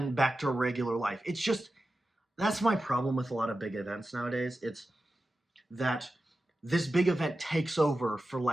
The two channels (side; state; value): both; normal; correlation 0.93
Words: back to regular life. It's just, that's my problem with a lot of big events nowadays. It's that this big event takes over for